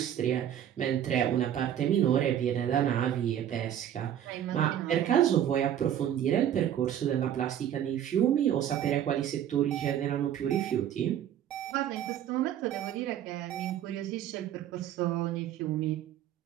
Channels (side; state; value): left; quieter; 10.5 dB